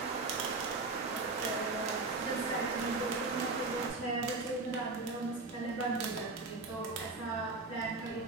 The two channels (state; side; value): quieter; left; 3.5 dB